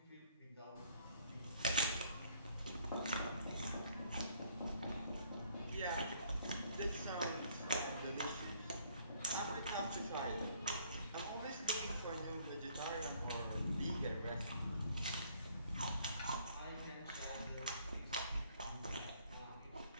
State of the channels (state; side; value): inverted; both; correlation -0.63